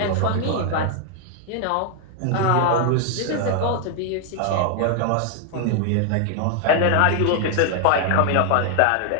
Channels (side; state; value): both; different; correlation 0.00